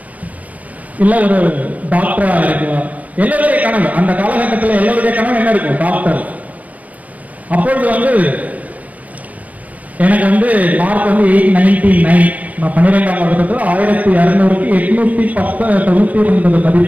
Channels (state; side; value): late; left; 0.070 ms